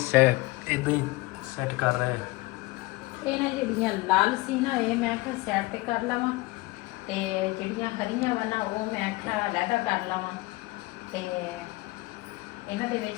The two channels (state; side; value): quieter; right; 21.8 dB